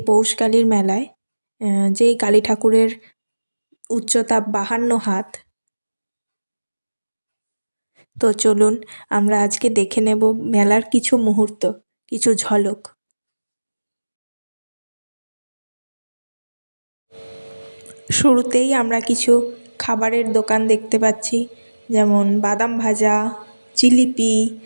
পৌষকালীর মেলায়, যেই কালী ঠাকুরের উচ্চতা 52 হাত। তো চলুন আমরা আজকে দেখে নেব মেলার কিছু মুহূর্ত, কিছু ঝলক। শুরুতেই আমরা কিছু খাবারের দোকান দেখতে পাচ্ছি, যেমন বাদাম ভাজা, জিলিপি,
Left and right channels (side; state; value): both; inverted; correlation -1.00